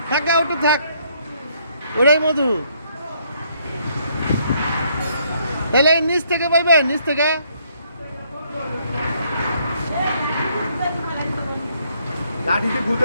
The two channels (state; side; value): inverted; both; correlation -0.69